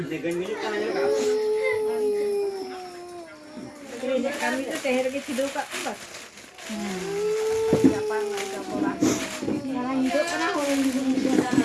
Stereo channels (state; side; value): identical; both; correlation 1.00